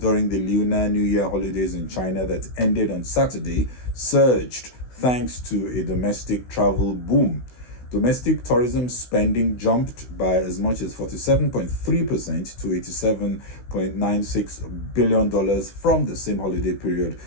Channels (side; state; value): right; late; 16 ms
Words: the Lunar New Year holidays in China that ended on Saturday surged thanks to a domestic travel boom. Domestic tourism spending jumped by as much as 47.3% to $87.96 billion from the same holiday period